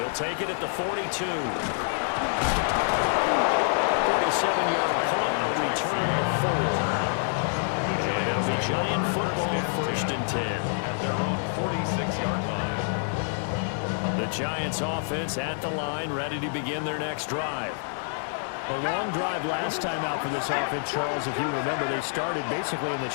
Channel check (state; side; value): silent; right; digital silence